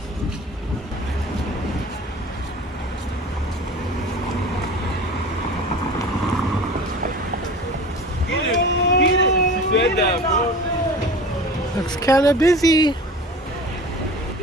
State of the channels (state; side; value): normal; both; correlation 0.38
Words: Looks kind of busy.